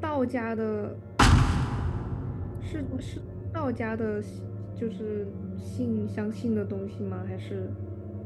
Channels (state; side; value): identical; both; correlation 1.00